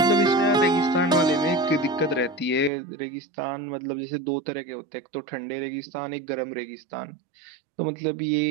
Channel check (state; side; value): drops out; left; at 2.7 s